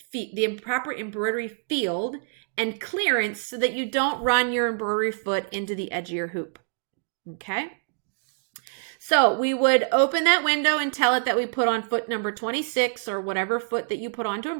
the proper embroidery field and clearance so that you don't run your embroidery foot into the edge of your hoop. Okay? So we would open that window and tell it that we put on foot number 26 or whatever foot that you put on to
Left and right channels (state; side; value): silent; left; digital silence